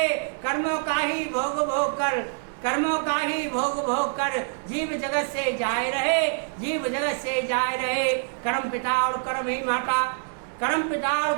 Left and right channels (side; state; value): left; silent; digital silence